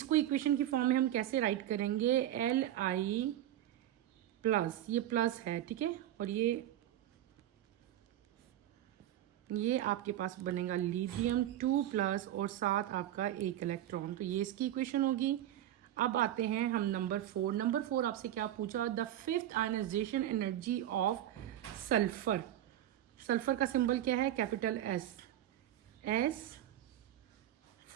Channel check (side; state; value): left; quieter; 12.4 dB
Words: इक्वेशन की फॉर्म में हम कैसे राइट करेंगे, Li प्लस, ये प्लस है, ठीक है, और ये आपके पास बनेगा लिथियम 2 प्लस और साथ आपका एक इलेक्ट्रॉन। तो ये इसकी इक्वेशन होगी। अब आते हैं हम नंबर 4। नंबर 4 आपसे क्या पूछा, the fifth ionization energy of sulphur. Sulphur का सिंबल क्या है, capital S